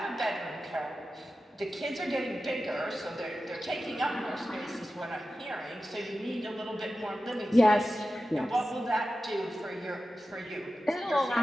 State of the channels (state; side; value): normal; both; correlation 0.93